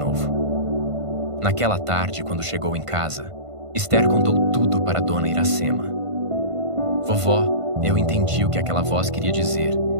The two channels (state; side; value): late; left; 1.5 ms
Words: Naquela tarde, quando chegou em casa, Esther contou tudo para Dona Iracema. Vovó, eu entendi o que aquela voz queria dizer.